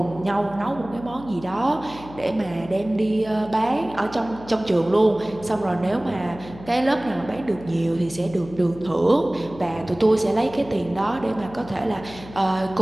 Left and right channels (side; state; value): left; noise; hum, 17 dB below the sound